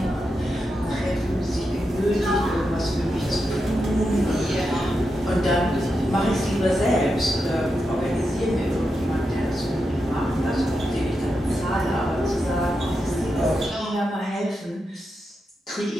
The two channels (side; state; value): both; normal; correlation 0.87